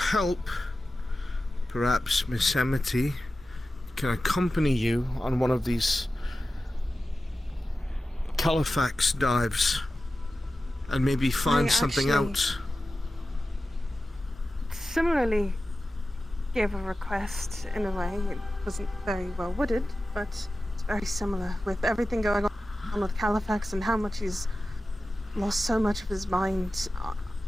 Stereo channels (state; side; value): normal; both; correlation 0.94